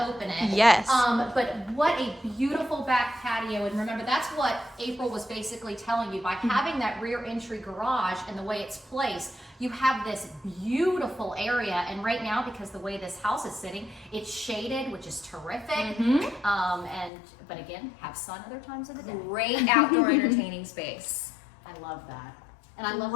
open it? Yes. But what a beautiful back patio, and remember that's what April was basically telling you, by having that rear entry garage and the way it's placed, you have this beautiful area, and right now, because the way this house is sitting, it's shaded, which is terrific. But again, have sun other times of the day. Great outdoor entertaining space. I love that. And I love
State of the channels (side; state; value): right; drops out; at 17.1 s